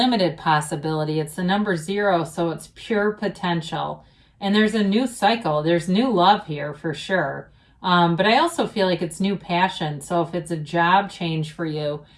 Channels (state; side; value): identical; both; correlation 1.00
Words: possibility. It's the number 0, so it's pure potential. And there's a new cycle. There's new love here for sure. But I also feel like it's new passion. So if it's a job change for you,